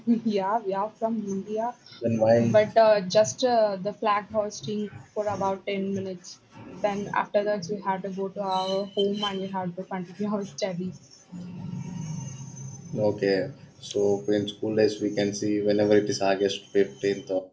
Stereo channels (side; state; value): both; identical; correlation 1.00